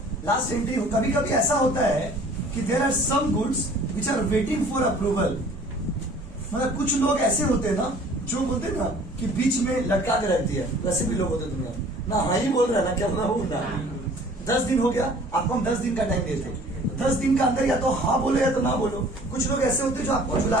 लास्ट एंट्री कभी कभी ऐसा होता है कि there are some goods which are waiting for approval. मतलब कुछ लोग ऐसे होते हैं ना, जो बोलते हैं ना कि बीच में लटका के रख दिया, वैसे भी लोग होते हैं दुनिया में। ना हाँ ही बोल रहा है ना क्या ना। 10 दिन हो गया, आपको हम 10 दिन का टाइम देते, 10 दिन का अंदर या तो हाँ बोलो या तो ना बोलो। कुछ लोग ऐसे होते हैं जो आपको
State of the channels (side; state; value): both; normal; correlation 0.51